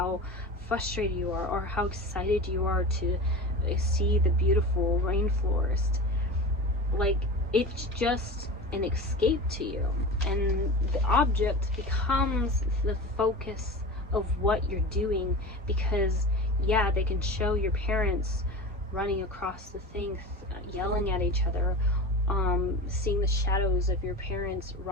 frustrated you are, or how excited you are to see the beautiful rainforest. Like it's just an escape to you, and the object becomes the focus of what you're doing. Because yeah, they can show your parents running across the thing, yelling at each other, seeing the shadows of your parents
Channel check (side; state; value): both; normal; correlation 0.31